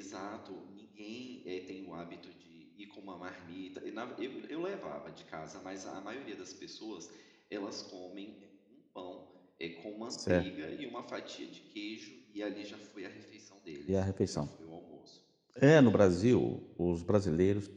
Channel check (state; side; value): identical; both; correlation 1.00